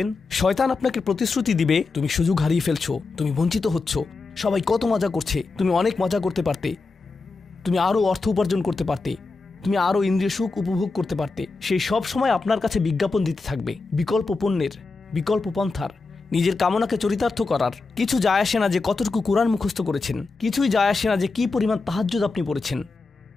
শয়তান আপনাকে প্রতিশ্রুতি দিবে তুমি সুযোগ হারিয়ে ফেলছো, তুমি বঞ্চিত হচ্ছ, সবাই কত মজা করছে, তুমি অনেক মজা করতে পারতে, তুমি আরও অর্থ উপার্জন করতে পারতে, তুমি আরও ইন্দ্রিয় সুখ উপভোগ করতে পারতে। সেই সব সময় আপনার কাছে বিজ্ঞাপন দিতে থাকবে বিকল্প পণ্যের, বিকল্প পন্থার, নিজের কামনাকে চরিতার্থ করার। কিছু যায় আসে না যে কতটুকু কোরআন মুখস্থ করেছেন, কিছুই যায় আসে না যে কি পরিমাণ তাহাজ্জুদ আপনি পড়েছেন,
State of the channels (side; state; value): right; quieter; 3.9 dB